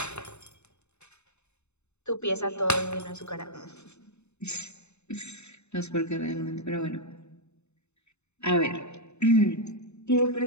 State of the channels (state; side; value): late; right; 0.81 ms